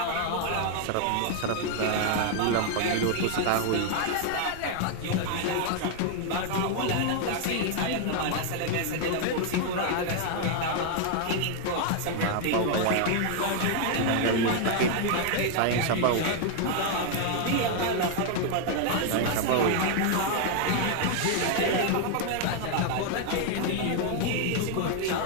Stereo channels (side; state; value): both; different; correlation 0.00